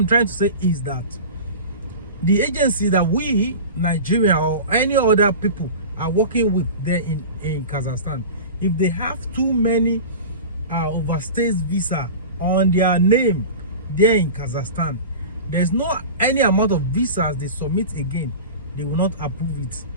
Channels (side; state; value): both; inverted; correlation -0.33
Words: trying to say is that the agency that we, Nigeria or any other people, are working with there in Kazakhstan, if they have too many overstays visa on their name there in Kazakhstan, there's no any amount of visas they submit again, they will not approve it.